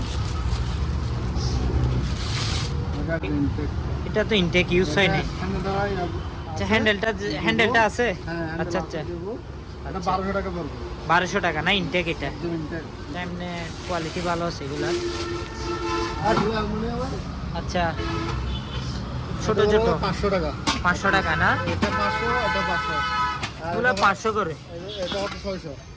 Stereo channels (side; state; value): both; identical; correlation 1.00